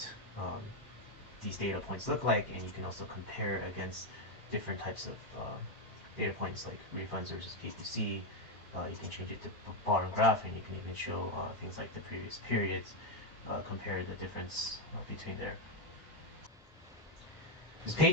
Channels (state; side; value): normal; both; correlation 0.06